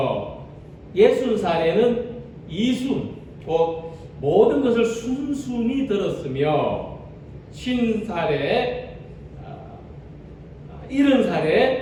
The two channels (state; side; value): identical; both; correlation 1.00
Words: 60살에는 이순 곧 모든 것을 순순히 들었으며 50살에